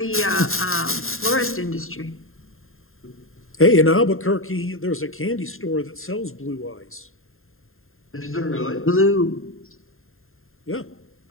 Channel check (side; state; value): right; late; 0.61 ms